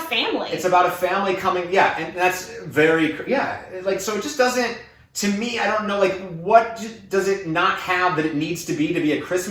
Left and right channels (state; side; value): identical; both; correlation 1.00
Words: It's about a family coming, and that's very, like, so it just doesn't, to me, I don't know, like, what does it not have that it needs to be a